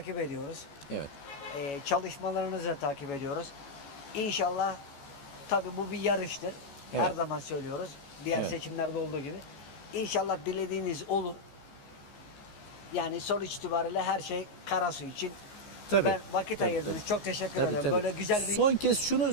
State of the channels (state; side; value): late; right; 14 ms